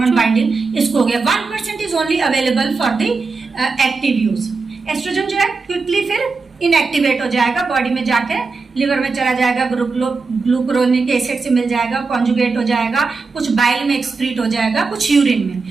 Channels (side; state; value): left; quieter; 4.3 dB